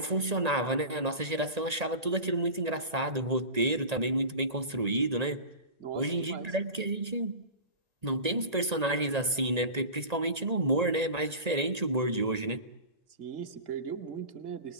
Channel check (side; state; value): left; late; 1.8 ms